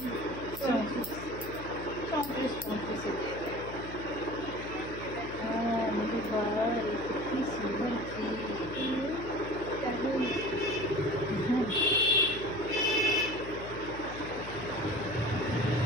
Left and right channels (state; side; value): noise; left; hum, 11 dB below the sound